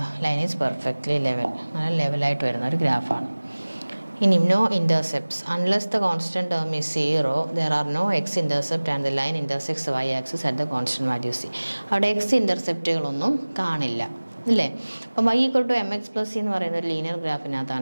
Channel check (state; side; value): inverted; both; correlation -1.00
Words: line is perfectly level. നല്ല ലെവലായിട്ട് വരുന്ന ഒരു ഗ്രാഫാണ്. ഇനി no intercepts. Unless the constant term is 0, there are no x intercept and the line intersects the y axis at the constant value c. അവിടെ X ഇൻ്റർസെപ്റ്റുകളൊന്നും കാണില്ല, അല്ലേ? അപ്പം y equal to M X plus C എന്ന് പറയുന്ന ഒരു linear